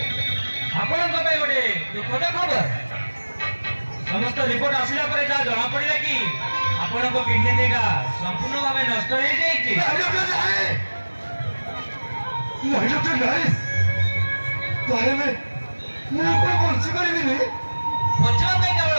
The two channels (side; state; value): both; inverted; correlation -1.00